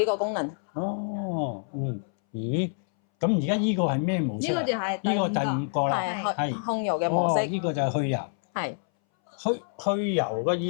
個功能。哦，咦，咁而家呢個係咩模式？呢個就係呢個第五個啦，係控油嘅模式。呢個就係去油。係。去油嘅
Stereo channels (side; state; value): right; silent; 60 dB below the other